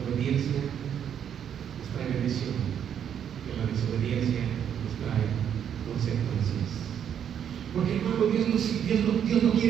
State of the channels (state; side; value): quieter; left; 8.9 dB